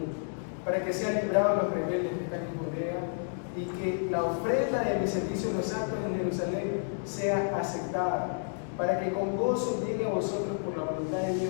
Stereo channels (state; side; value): silent; right; digital silence